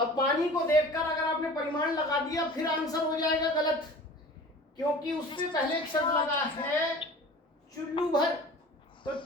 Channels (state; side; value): normal; both; correlation 0.42